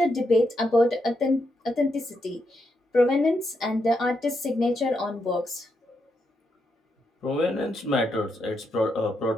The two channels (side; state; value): both; normal; correlation 0.81